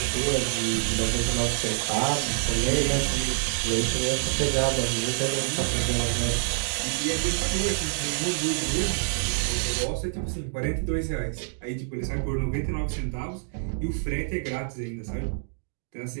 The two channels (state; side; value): silent; left; digital silence